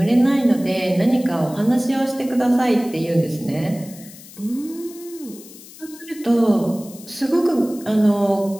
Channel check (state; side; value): noise; left; hiss, 19 dB below the sound